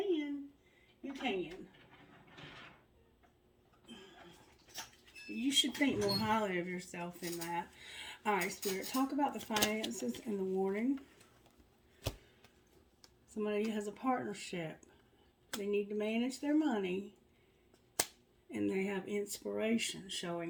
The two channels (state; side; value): identical; both; correlation 1.00